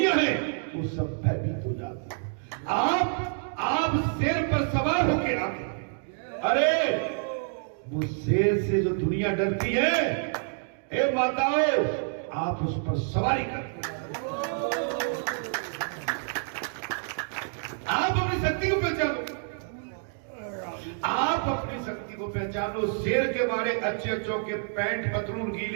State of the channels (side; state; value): left; silent; 59 dB below the other